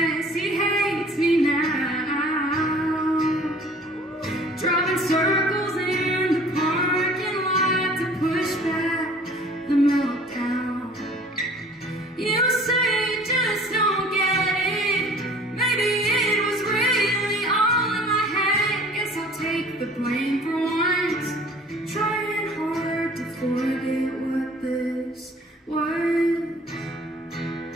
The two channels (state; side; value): normal; both; correlation 0.50